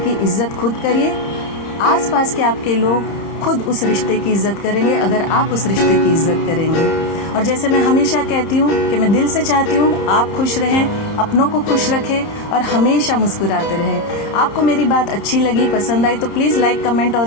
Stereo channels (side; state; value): right; late; 30 ms